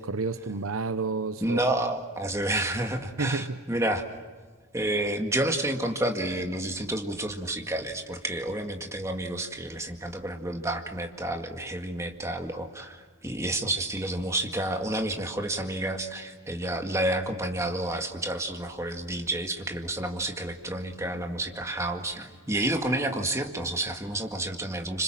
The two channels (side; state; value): both; normal; correlation 0.36